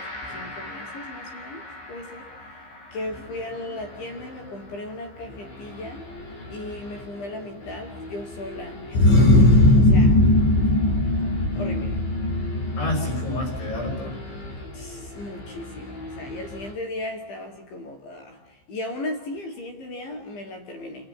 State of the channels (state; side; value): late; right; 15 ms